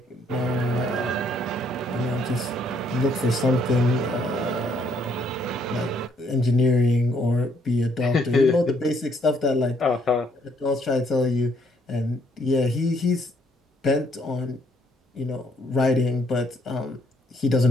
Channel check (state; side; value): normal; both; correlation 0.69